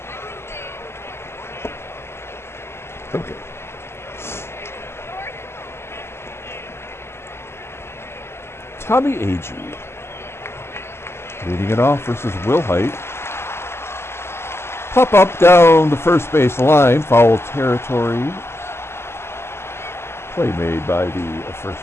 Okay. Tommie AGEE leading it off versus Willhite. Pop up down the first base line, foul territory. Play made by the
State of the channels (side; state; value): right; late; 0.12 ms